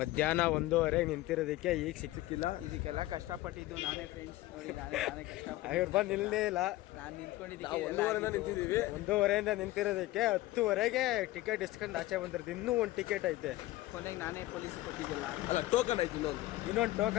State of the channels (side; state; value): right; quieter; 17.4 dB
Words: 1:15 ನಿಂತಿರೋದಕ್ಕೆ ಈಗ ಸಿಕ್ಕಿಲ್ಲ. ಇದಕ್ಕೆಲ್ಲ ಕಷ್ಟಪಟ್ಟಿದ್ದು ನಾನೇ ಫ್ರೆಂಡ್ಸ್. ನೋಡಿ ನಾನೇ ಕಷ್ಟಪಟ್ಟು ಇವ್ರು ಬಂದು ನಿಲ್ಲೇ ಇಲ್ಲ. ನಾನು ನಿಂತ್ಕೊಂಡಿದ್ದೀವಿ. 1:15 ನಿಂತಿದ್ದೀವಿ. 1:15 ನಿಂತಿರೋದಕ್ಕೆ 10:00ಗೆ ಟಿಕೆಟ್ ಇಸ್ಕೊಂಡು ಆಚೆ ಬಂದಿರ್ತೀವಿ. ಇನ್ನೂ ಒಂದು ಟಿಕೆಟ್ ಐತೆ. ಕೊನೆಗೆ ನಾನೇ ಪೊಲೀಸ್ ಕೊಟ್ಟಿದ್ದಿಲ್ಲ. ಅಲ್ಲ, ಟೋಕನ್ ಐತೆ. ಇನ್ನೊಂದು